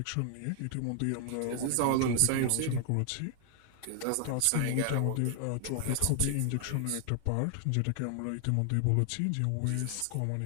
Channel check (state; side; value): different; both; correlation 0.00